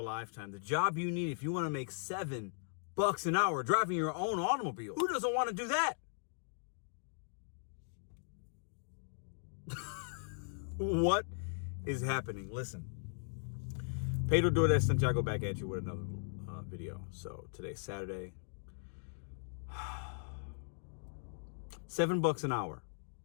lifetime. The job you need if you want to make $7 an hour driving your own automobile. Who doesn't want to do that? What is happening? Listen. Pedro Doordash Santiago back at you with another video. So today's Saturday. $7 an hour.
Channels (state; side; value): silent; right; digital silence